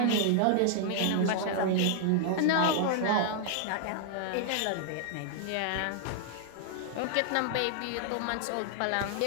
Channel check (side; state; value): both; different; correlation -0.01